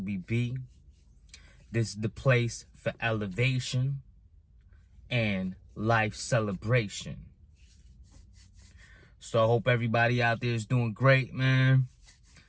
be. This is the place for elevation and life celebration. So I hope everybody out there is doing great, man.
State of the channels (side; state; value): both; identical; correlation 1.00